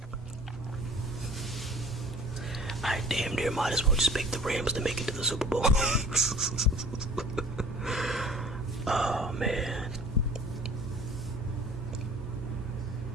I damn near might as well just pick the Rams to make it to the Super Bowl. Oh, man.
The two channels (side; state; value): both; normal; correlation 0.47